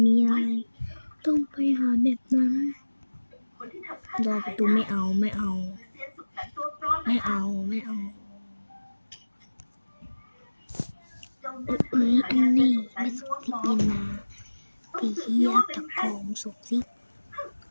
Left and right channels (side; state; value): both; inverted; correlation -1.00